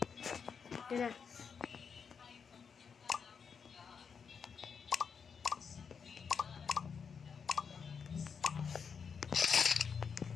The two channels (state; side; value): quieter; right; 6.3 dB